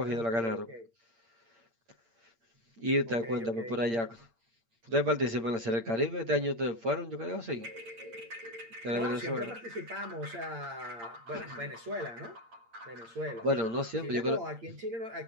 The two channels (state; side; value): late; left; 8.8 ms